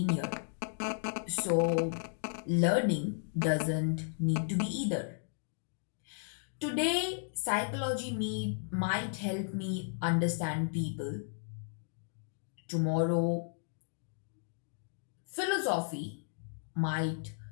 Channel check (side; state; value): right; silent; digital silence